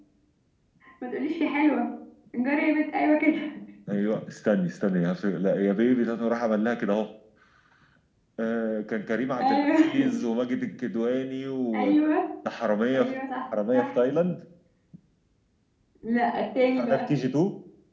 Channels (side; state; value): both; identical; correlation 1.00